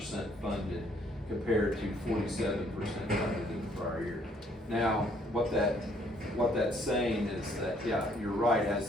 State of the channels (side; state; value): both; normal; correlation 0.65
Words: funded compared to 47% funded in the prior year. Now, what that's saying is that, yeah, you're right,